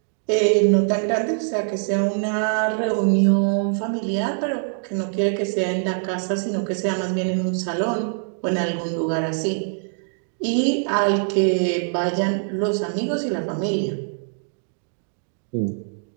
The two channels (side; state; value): left; silent; digital silence